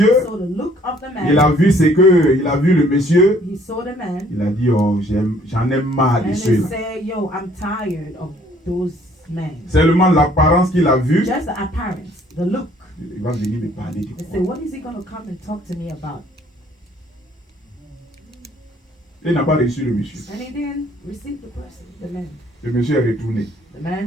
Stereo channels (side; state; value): both; normal; correlation 0.60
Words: saw the look of the man. Il a vu il a vu le monsieur. He saw the man. Il a dit, oh, j'en ai marre de And he ceux-là. said, yo, I'm tired of those men. Seulement l'apparence qu'il a vue, Just the appearance, the look. il va venir me parler du They quoi. said, what is he going to come and talk to me about? Il n'a pas reçu le monsieur. And he didn't receive the person, the man. Le monsieur est retourné. The